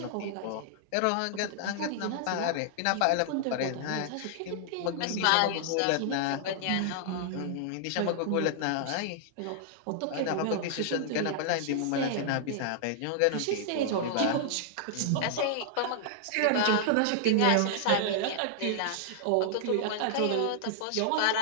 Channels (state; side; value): different; both; correlation -0.01